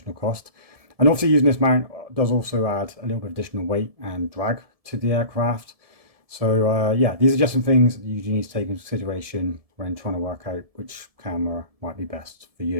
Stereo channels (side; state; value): left; late; 1.7 ms